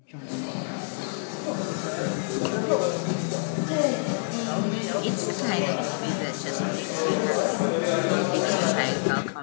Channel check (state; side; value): silent; right; digital silence